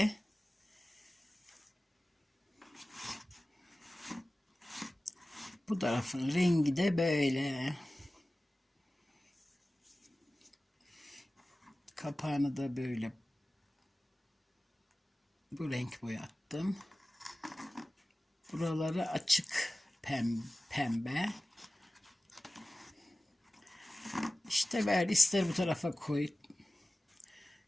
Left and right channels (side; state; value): both; normal; correlation 0.96